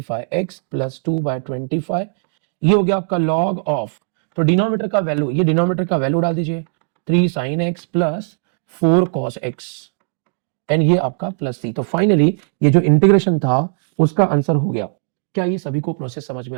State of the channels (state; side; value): silent; left; digital silence